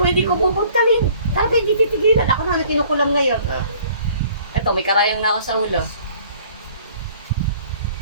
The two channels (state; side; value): inverted; both; correlation -0.55